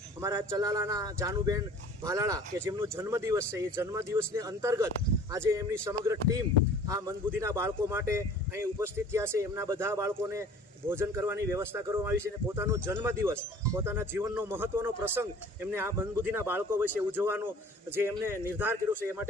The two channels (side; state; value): both; normal; correlation 0.48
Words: અમારા ચલાલાના જાનુબેન ભાલાળા કે જેમનો જન્મદિવસ છે, એ જન્મદિવસને અંતર્ગત આજે એમની સમગ્ર ટીમ આ મંદબુદ્ધિના બાળકો માટે અહીં ઉપસ્થિત થયા છે. એમના બધા બાળકોને ભોજન કરવાની વ્યવસ્થા કરવામાં આવી છે અને પોતાનો જન્મદિવસ, પોતાના જીવનનો મહત્વનો પ્રસંગ એમને આ મંદબુદ્ધિના બાળકો વિશે ઉજવવાનો જે એમને નિર્ધાર કર્યો છે, એ